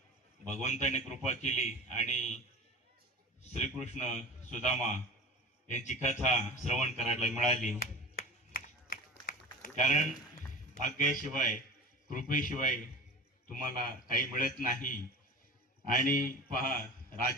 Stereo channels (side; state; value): both; normal; correlation 0.34